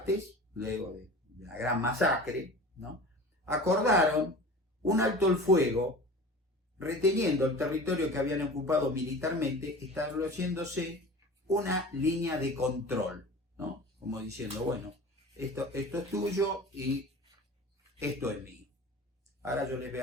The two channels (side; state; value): both; normal; correlation 0.37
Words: luego de la gran masacre, ¿no?, acordaron un alto el fuego, reteniendo el territorio que habían ocupado militarmente, estableciéndose una línea de control, ¿no?, como diciendo, bueno, esto es tuyo y esto es mío. Ahora yo les voy